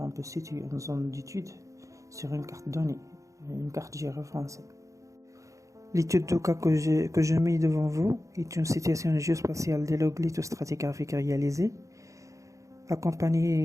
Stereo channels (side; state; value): left; late; 0.15 ms